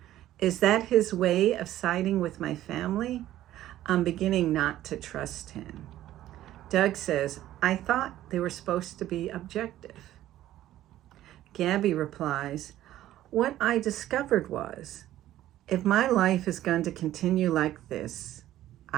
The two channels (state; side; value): quieter; left; 13.6 dB